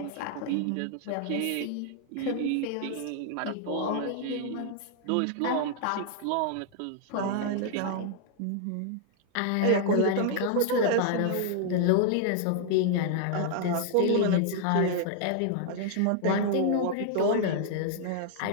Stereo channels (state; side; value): different; both; correlation -0.01